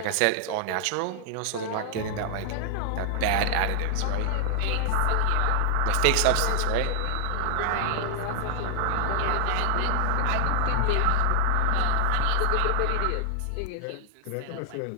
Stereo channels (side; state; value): both; different; correlation 0.00